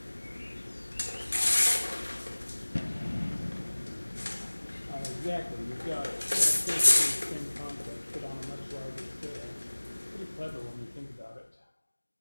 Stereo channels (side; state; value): both; inverted; correlation -1.00